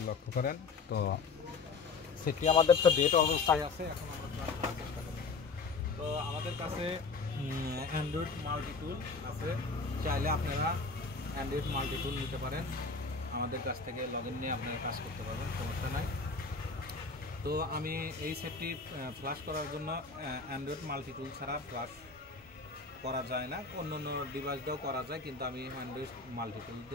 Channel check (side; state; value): right; quieter; 4.3 dB